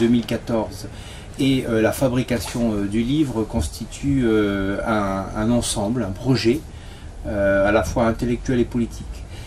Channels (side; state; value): both; identical; correlation 1.00